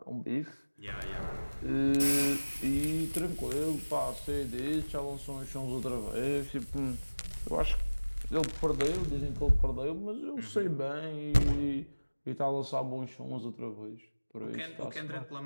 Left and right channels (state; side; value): inverted; both; correlation -1.00